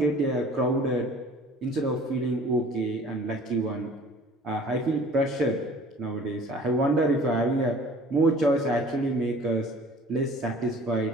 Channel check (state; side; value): normal; both; correlation 0.49